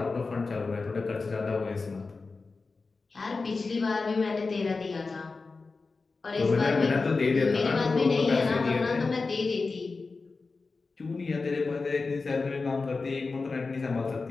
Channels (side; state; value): right; quieter; 4.1 dB